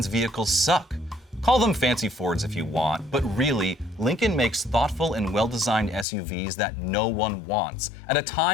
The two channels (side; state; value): right; drops out; at 6.1 s